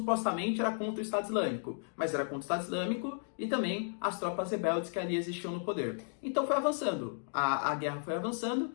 era contra o Estado Islâmico, mas era contra o Estado Islâmico e também as tropas rebeldes que ali existiam no poder. Então foi avançando, a guerra foi avançando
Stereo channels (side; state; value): right; silent; digital silence